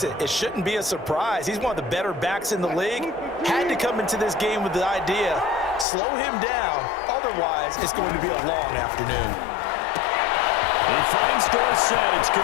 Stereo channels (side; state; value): right; drops out; at 5.9 s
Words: it, it shouldn't be a surprise. He's one of the better backs in the league. Had to come into this game with the idea, slow him down, otherwise it's going to be a long afternoon. He finds Dorsett, it's